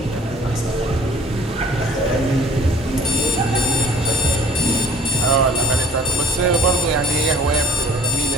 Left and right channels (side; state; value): both; normal; correlation 0.51